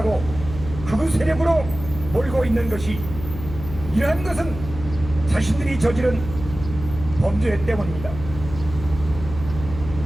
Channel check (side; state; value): left; noise; hum, 10 dB below the sound